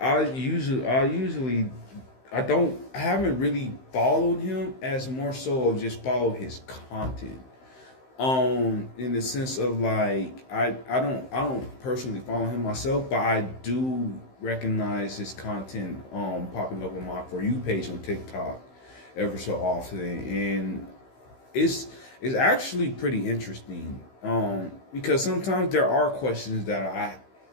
haven't really followed him as more so of just follow his content. In the sense of like I don't personally follow him myself, but I do recognize his content popping up on my For You page on TikTok ever so often, and it's actually pretty interesting. Because sometimes there are questions that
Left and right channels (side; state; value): right; late; 15 ms